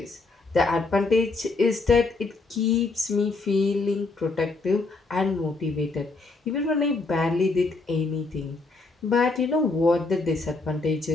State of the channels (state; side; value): quieter; right; 3.6 dB